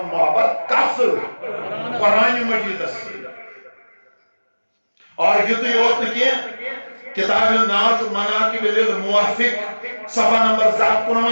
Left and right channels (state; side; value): inverted; both; correlation -1.00